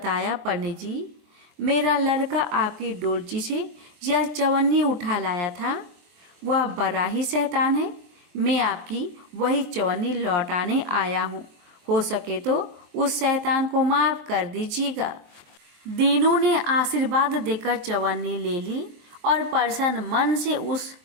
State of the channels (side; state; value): left; late; 23 ms